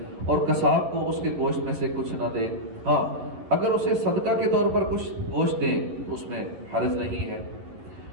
اور قصاب کو اس کے گوشت میں سے کچھ نہ دیں۔ ہاں اگر اسے صدقہ کے طور پر کچھ گوشت دیں تو اس میں حرج نہیں ہے۔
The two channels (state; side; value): late; left; 11 ms